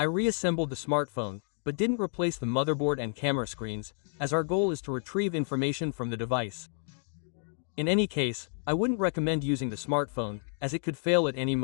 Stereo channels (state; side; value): silent; right; 58 dB below the other